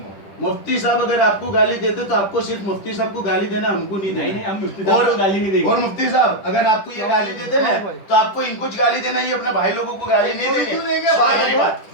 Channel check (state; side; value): late; right; 10 ms